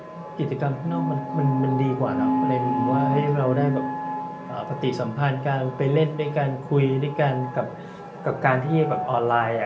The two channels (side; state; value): both; identical; correlation 1.00